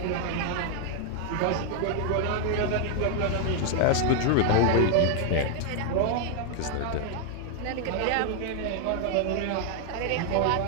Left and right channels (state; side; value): different; both; correlation 0.00